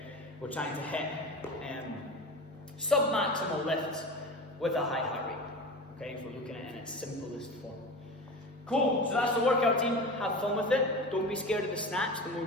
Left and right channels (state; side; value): normal; both; correlation 0.30